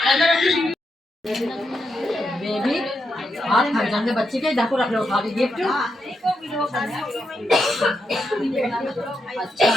बेबी हाथ थक जाएंगे बच्चे के देखो रख लो उठा दी गिफ्ट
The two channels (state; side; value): normal; both; correlation 0.83